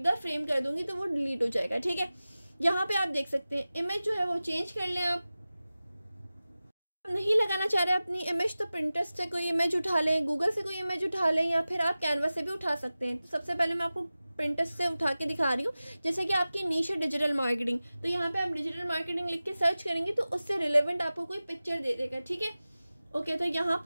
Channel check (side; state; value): both; inverted; correlation -0.96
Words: द फ्रेम कर दूंगी तो वो डिलीट हो जाएगा, ठीक है। यहाँ पे आप देख सकते हैं इमेज जो है वो चेंज कर लें। आप नहीं लगाना चाह रहे अपनी इमेज तो पिंटरेस्ट से कोई इमेज उठा लें, गूगल से कोई इमेज उठा लें या फिर आप कैनवा से भी उठा सकते हैं। तो सबसे पहले मैं आपको पिंटरेस्ट से उठा के दिखा रही हूँ। जैसे कि आपकी नीश है डिजिटल मार्केटिंग, तो यहाँ पे आप डिजिटल मार्केटिंग लिख के सर्च करेंगे तो उससे रिलेवेंट आपको कोई पिक्चर दे देगा, ठीक है। ओके तो यहाँ